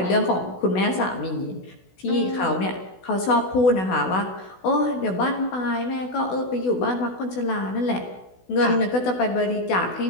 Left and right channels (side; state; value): right; late; 16 ms